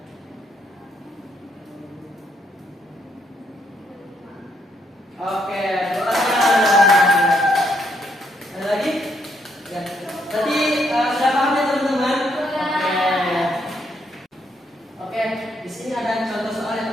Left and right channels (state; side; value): normal; both; correlation 0.74